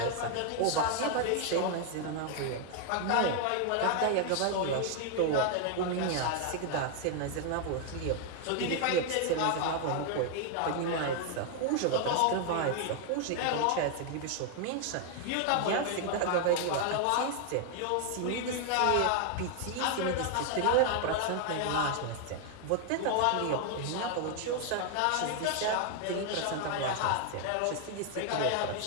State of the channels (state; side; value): different; both; correlation 0.00